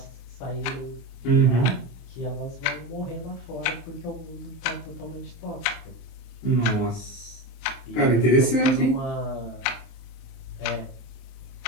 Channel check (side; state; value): right; late; 27 ms